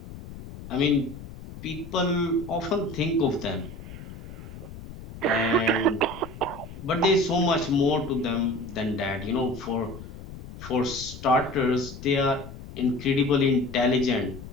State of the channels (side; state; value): left; noise; rumble, 13 dB below the sound